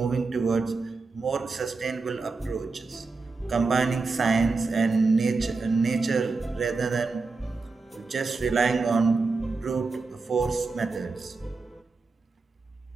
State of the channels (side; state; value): left; quieter; 4.0 dB